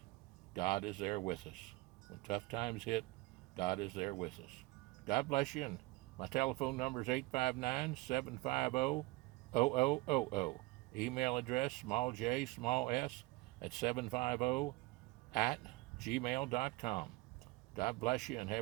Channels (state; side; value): quieter; left; 21.3 dB